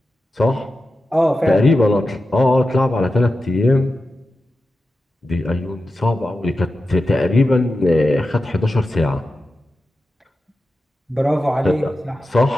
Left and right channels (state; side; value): normal; both; correlation 0.92